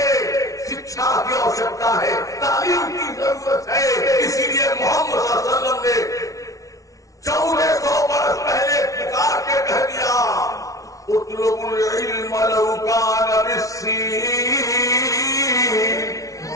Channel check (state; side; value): late; right; 0.17 ms